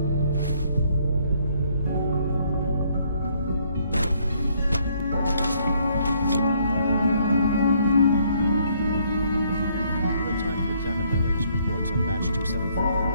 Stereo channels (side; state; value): both; inverted; correlation -0.67